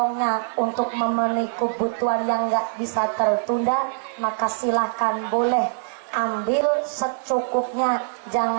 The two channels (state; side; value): silent; left; 56 dB below the other